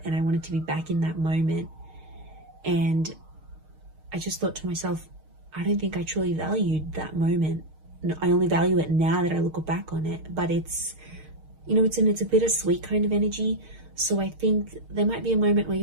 and I wanted to be back in that moment. And I just thought to myself, I don't think I truly valued that moment. I only value it now that I look back on it. But it's, you know, it's a bittersweet kind of energy. So I think there might be a moment where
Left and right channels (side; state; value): left; late; 6.5 ms